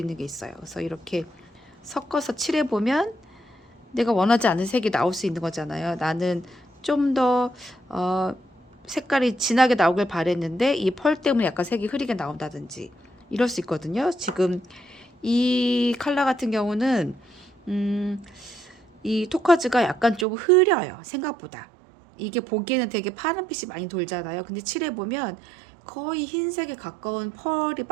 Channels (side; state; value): left; drops out; at 20.2 s